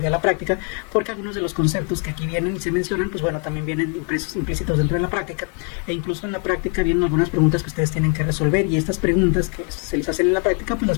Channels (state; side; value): quieter; right; 39.3 dB